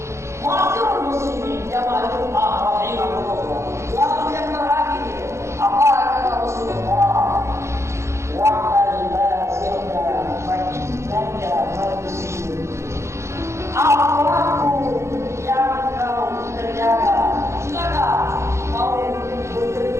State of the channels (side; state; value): left; late; 0.13 ms